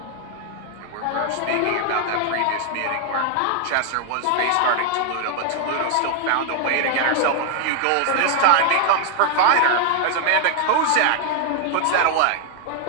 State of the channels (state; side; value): different; both; correlation 0.00